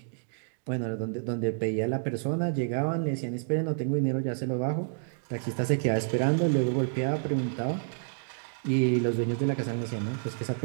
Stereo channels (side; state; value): left; silent; digital silence